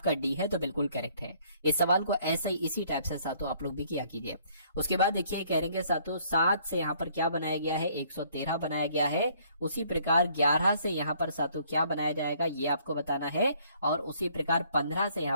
डी है तो बिल्कुल करेक्ट है। इस सवाल को ऐसे ही इसी टाइप से सातों आप लोग भी किया कीजिए। उसके बाद देखिए कहेंगे सातों 7 से यहाँ पर क्या बनाया गया है, 113 बनाया गया है। उसी प्रकार 11 से यहाँ पर सातों क्या बनाया जाएगा ये आपको बताना है। और उसी प्रकार 15 से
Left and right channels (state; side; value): inverted; both; correlation -0.62